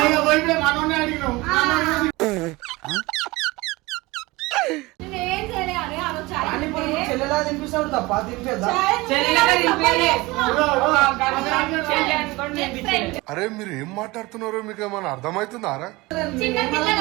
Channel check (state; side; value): quieter; left; 22.0 dB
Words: మనోనే అడిగినావు చెల్లెలా తినిపిస్తాడు తప్ప తినిపేద్దా అరే మీరు ఏం మాట్లాడుతున్నారో మీకు ఏమైనా అర్థమవుతుందారా?